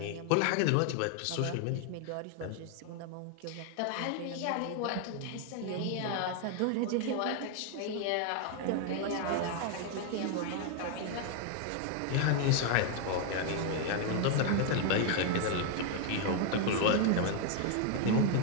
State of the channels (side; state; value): both; different; correlation 0.01